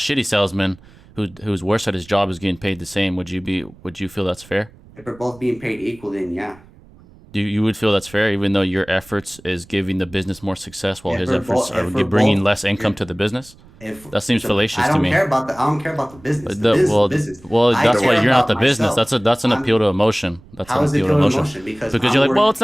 salesman who's worse at his job is getting paid the same. Would you feel that's fair? If we're both being paid equally, then yeah. You would feel that's fair, even though your efforts is giving the business more success, while his efforts are bringing less income to the business. That seems fallacious to me. I don't care about the business. Well, that's why you're not the business. That's an appeal to emotion. That's an appeal to emotion. Because you're like, well, it's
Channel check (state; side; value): noise; right; rumble, 24 dB below the sound